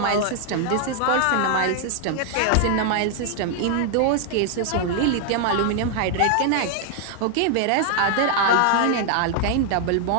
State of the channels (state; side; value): different; both; correlation 0.00